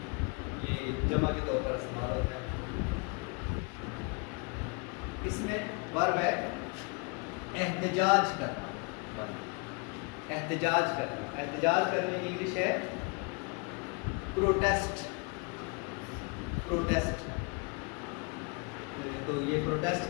ये जमा के तौर पर इस्तेमाल होता है। इसमें वर्ब है एहतजाज करना, एहतजाज करना, एहतजाज करने की इंग्लिश है प्रोटेस्ट, प्रोटेस्ट, तो ये प्रोटेस्ट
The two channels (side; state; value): right; quieter; 32.1 dB